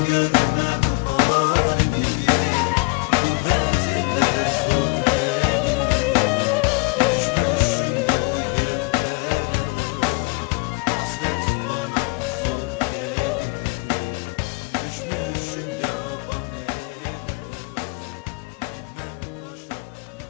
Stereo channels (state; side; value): quieter; right; 28.7 dB